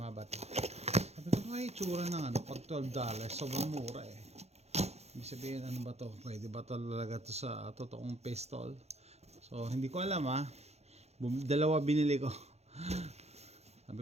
ba ito? Sabi ko ay itsura ng pag $12, sobrang mura eh. Ibig sabihin ano ba to? Pwede ba talaga to sa totoong pistol? So hindi ko alam ha. Dalawa binili ko. Sabi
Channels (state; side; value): late; left; 0.31 ms